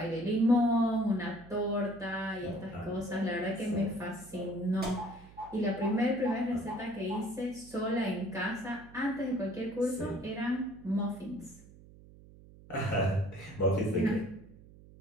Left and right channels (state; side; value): noise; right; hum, 21 dB below the sound